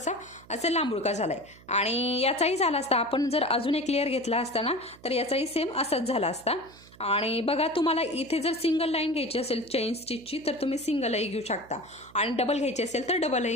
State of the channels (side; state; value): right; noise; hum, 24 dB below the sound